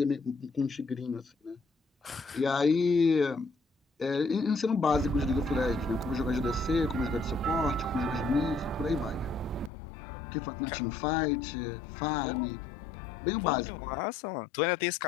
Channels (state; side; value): drops out; right; at 9.7 s